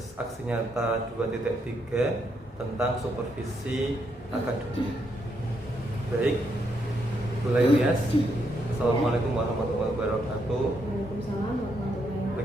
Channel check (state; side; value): normal; both; correlation 0.78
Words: aksi nyata 2.3 tentang supervisi akademik. Baik, Bu Lailias. Assalamualaikum warahmatullahi wabarakatuh. Waalaikumsalam warahmatullahi wabarakatuh.